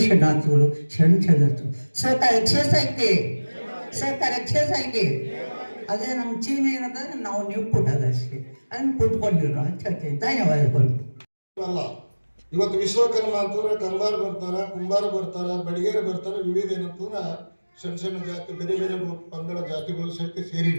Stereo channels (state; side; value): inverted; both; correlation -1.00